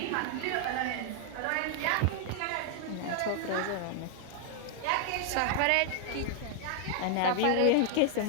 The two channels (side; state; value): both; different; correlation 0.00